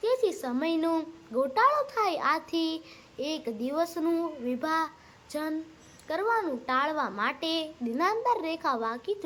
તેથી સમયનો ગોટાળો થાય. આથી એક દિવસનું વિભાજન કરવાનું ટાળવા માટે દિનાંતર રેખા વાંકી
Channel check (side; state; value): both; identical; correlation 1.00